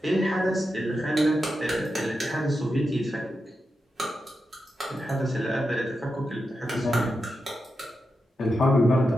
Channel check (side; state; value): both; normal; correlation 0.88